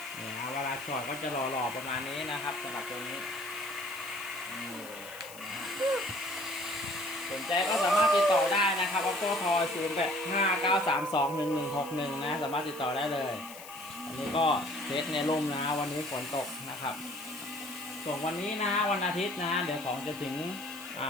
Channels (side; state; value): left; noise; hiss, 16 dB below the sound